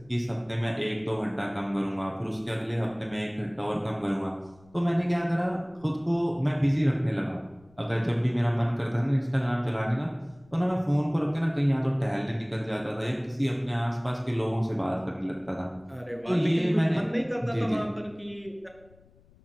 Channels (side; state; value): left; noise; rumble, 28 dB below the sound